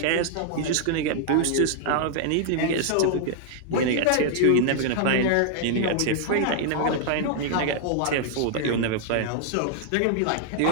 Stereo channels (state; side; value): different; both; correlation 0.00